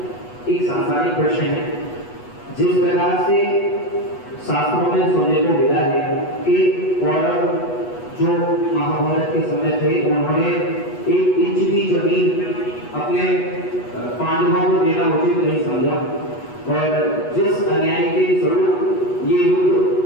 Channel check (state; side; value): late; right; 8.2 ms